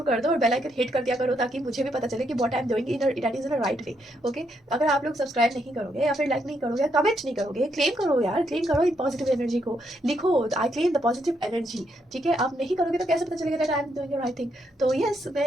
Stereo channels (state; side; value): normal; both; correlation 0.77